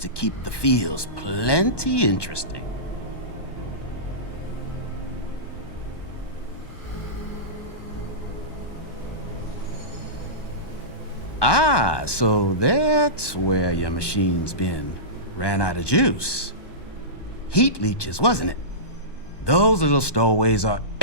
keep the fields plenty interesting. Ah, so that's where your machine's been. Ran out of juice. Heat leeches, wasn't it? Those little stowaways are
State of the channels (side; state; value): right; late; 1.2 ms